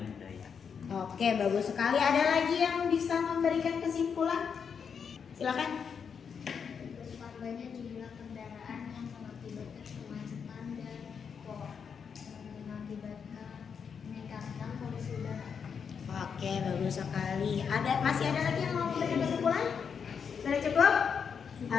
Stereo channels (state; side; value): quieter; right; 6.6 dB